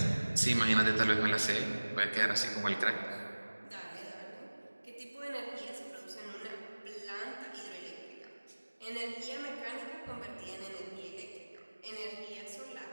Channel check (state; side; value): inverted; both; correlation -1.00